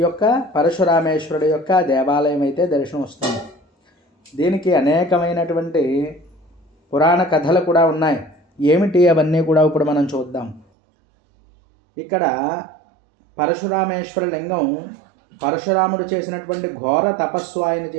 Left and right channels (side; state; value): left; drops out; at 10.7 s